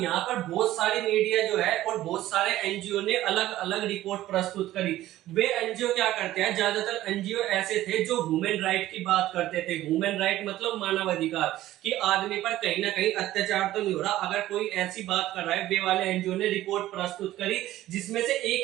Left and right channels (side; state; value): left; quieter; 14.7 dB